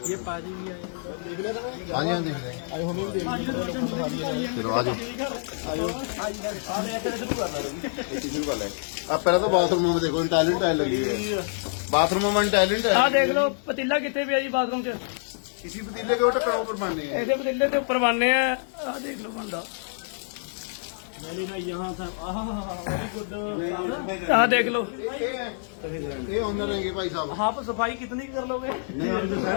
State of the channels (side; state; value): right; silent; digital silence